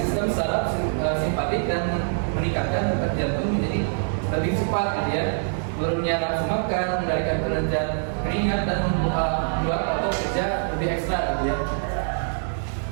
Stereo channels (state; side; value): silent; left; digital silence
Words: saraf simpatik dan meningkatkan detak jantung menjadi lebih cepat gitu ya. Turunnya nafsu makan, mengendalikan kerja keringat dan membuat otot kerja lebih ekstra gitu ya.